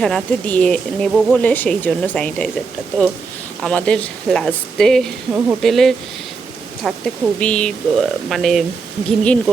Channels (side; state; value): left; quieter; 4.8 dB